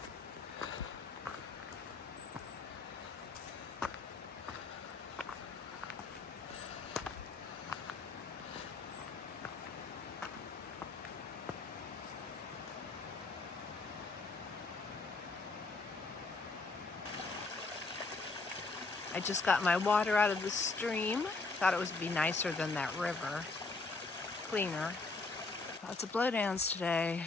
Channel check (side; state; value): right; quieter; 3.8 dB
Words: I just got my water out of the stream. Thought it would be nicer than that river. Cleaner. Lots of blowdowns today.